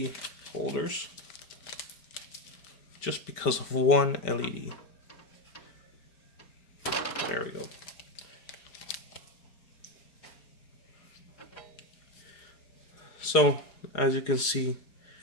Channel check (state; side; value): late; right; 4.8 ms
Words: holders just because of one LED. There we go. So, as you can see,